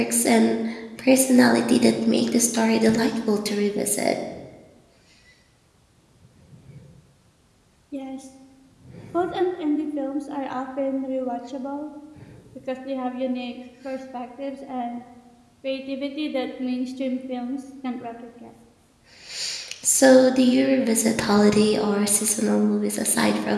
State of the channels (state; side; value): identical; both; correlation 1.00